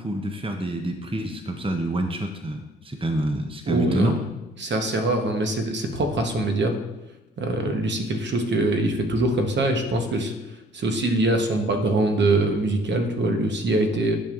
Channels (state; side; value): normal; both; correlation 0.58